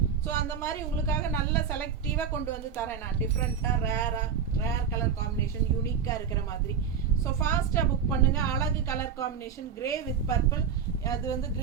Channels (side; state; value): left; quieter; 7.1 dB